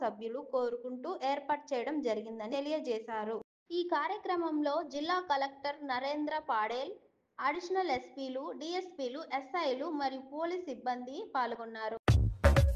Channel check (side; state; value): both; identical; correlation 1.00